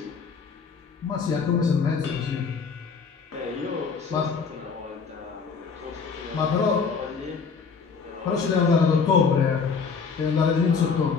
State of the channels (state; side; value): quieter; right; 5.4 dB